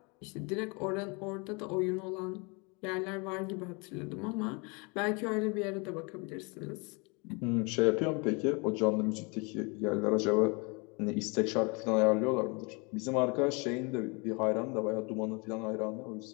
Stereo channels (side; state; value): right; quieter; 30.6 dB